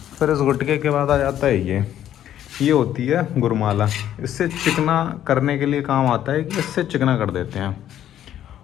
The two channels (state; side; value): quieter; right; 11.2 dB